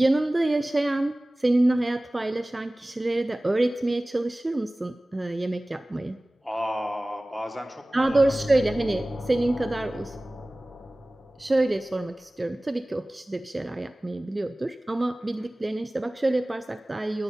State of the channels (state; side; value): normal; both; correlation 0.98